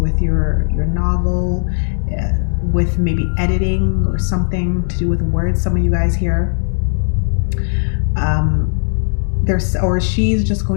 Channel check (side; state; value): right; silent; digital silence